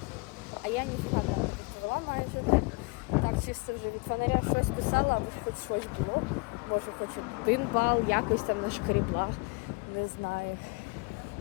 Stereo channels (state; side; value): quieter; right; 28.9 dB